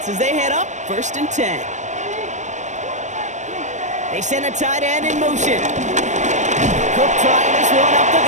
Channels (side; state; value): left; late; 0.34 ms